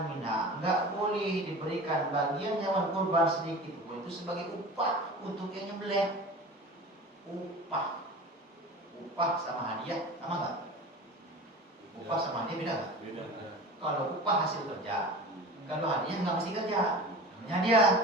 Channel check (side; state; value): both; normal; correlation 0.36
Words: minha. Enggak boleh diberikan bagian hewan kurban sedikit pun, itu sebagai upah untuk yang nyembelih. Upah sama hadiah sama enggak? Upah sama hadiah beda enggak? Beda. Kalau upah hasil kerja, kalau hadiah nggak mesti kerja. Namanya dia,